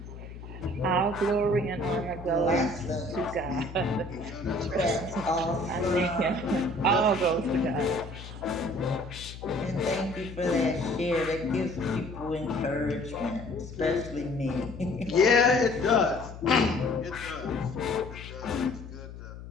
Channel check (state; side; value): noise; left; hum, 13 dB below the sound